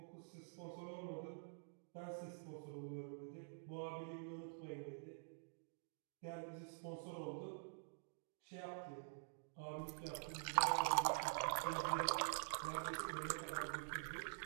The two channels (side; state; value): left; silent; digital silence